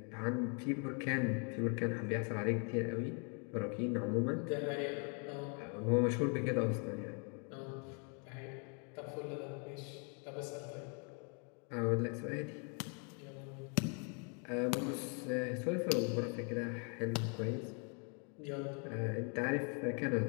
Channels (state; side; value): quieter; right; 38.2 dB